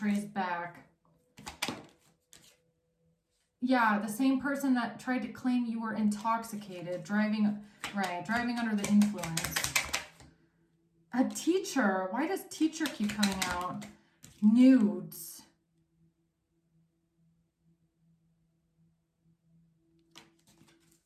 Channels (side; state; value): both; identical; correlation 1.00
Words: back. Yeah, the same person that tried to claim you were intoxicated, driving under the influence. A teacher. Why does teacher keep coming out? Nudes.